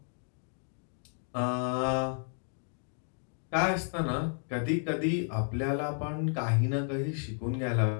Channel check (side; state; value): right; silent; 56 dB below the other